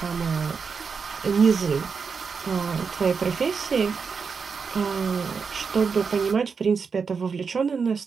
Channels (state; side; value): quieter; left; 5.5 dB